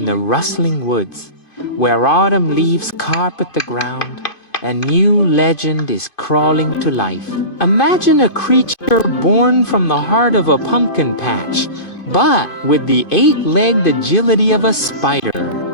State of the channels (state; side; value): late; right; 2.5 ms